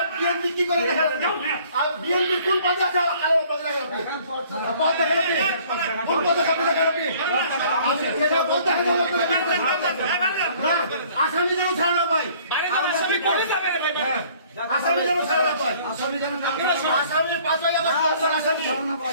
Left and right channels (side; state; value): both; inverted; correlation -0.56